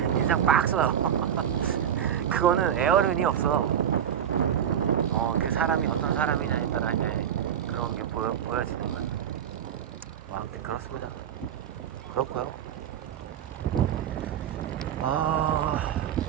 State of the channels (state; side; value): quieter; left; 9.3 dB